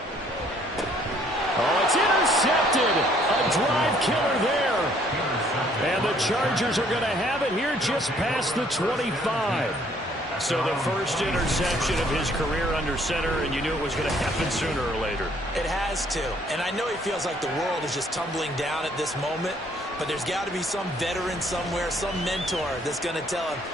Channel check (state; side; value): normal; both; correlation 0.63